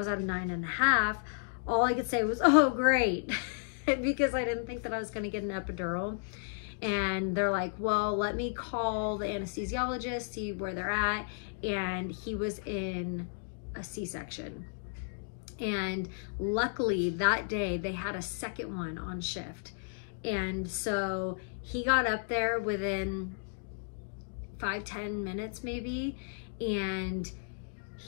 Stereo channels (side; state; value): right; silent; digital silence